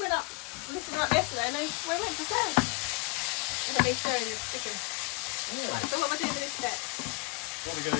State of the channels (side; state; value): right; quieter; 29.6 dB